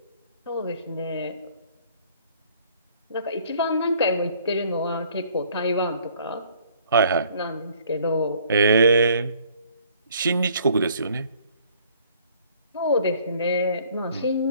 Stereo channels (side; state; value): both; inverted; correlation -0.58